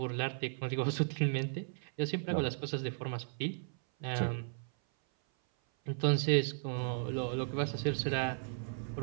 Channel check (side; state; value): left; silent; 54 dB below the other